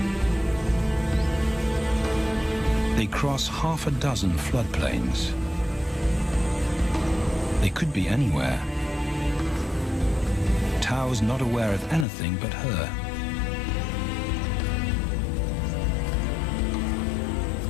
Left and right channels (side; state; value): right; drops out; at 12.1 s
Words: They cross half a dozen floodplains. They could be anywhere. Tao's not aware of anything but her.